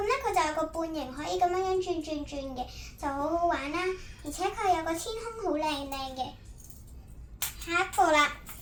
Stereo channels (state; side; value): identical; both; correlation 1.00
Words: 咧佢就有個半形可以咁樣轉嘅，就好好玩啦。而且佢有個天空好靚嘅。下一個啦，